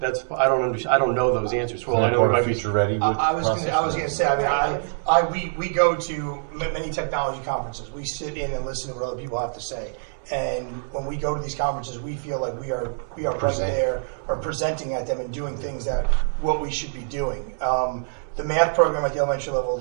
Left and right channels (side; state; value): left; silent; digital silence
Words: know those answers. Well, I know part of Future Ready. I was going to say. I mean, we go to many technology conferences. We sit in and listen to what other people have to say. And when we go to these conferences, we feel like we are right there, or presenting at them and doing things that what we should be doing. The math program at the elementary level,